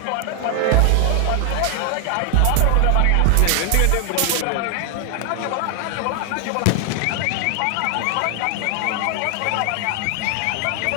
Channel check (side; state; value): both; different; correlation 0.00